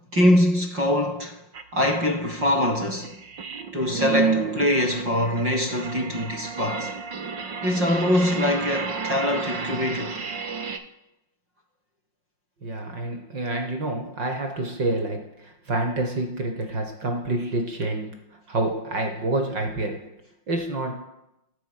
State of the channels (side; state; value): left; late; 5.6 ms